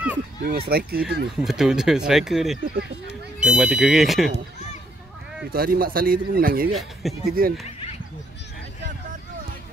Dia memang striker tu ni. Betul striker ni. Dia mati kering ke? Itu hari Mak Saleh tu pun menangis juga. Dia kerja kan.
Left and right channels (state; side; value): normal; both; correlation 0.72